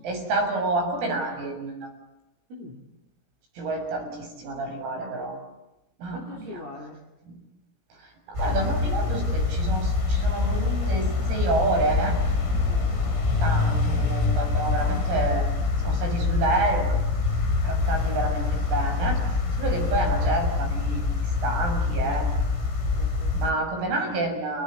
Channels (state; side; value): late; left; 17 ms